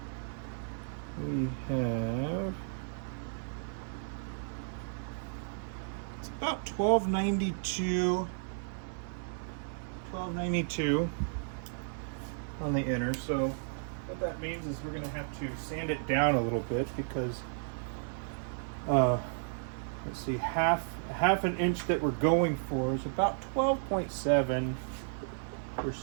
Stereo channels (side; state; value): left; silent; digital silence